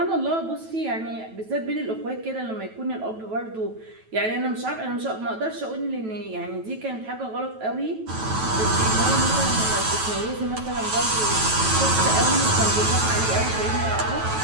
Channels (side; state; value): left; late; 9.2 ms